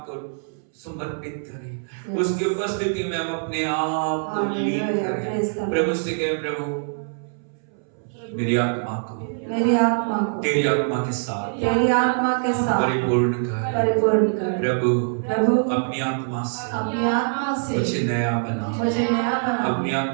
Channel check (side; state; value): left; silent; 63 dB below the other